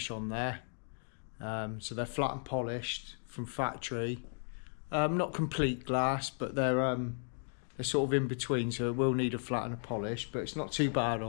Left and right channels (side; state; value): right; silent; 54 dB below the other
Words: on there. So they're flat and polished from factory. Not complete glass, but they're sort of in between, so it will need a flat and a polish, but it's not too bad